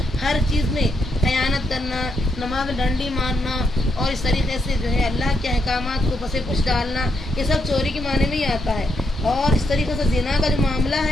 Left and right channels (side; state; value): both; normal; correlation 0.79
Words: हर चीज़ में खयानत करना, नमाज डंडी मारना और इस तरीके से जो है अल्लाह के अहकामात को पसे पुछ डालना, ये सब चोरी के माने में ही आता है। और इस तरीके से ज़िना का जो मामला